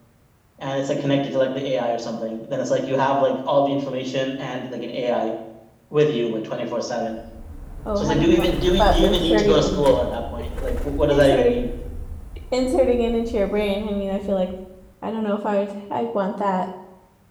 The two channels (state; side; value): identical; both; correlation 1.00